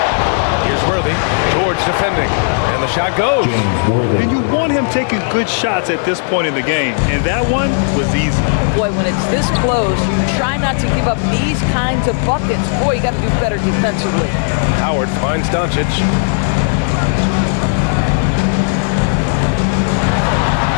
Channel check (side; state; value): right; silent; digital silence